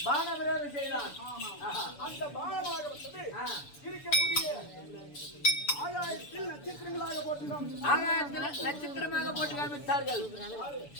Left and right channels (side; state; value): right; late; 6.9 ms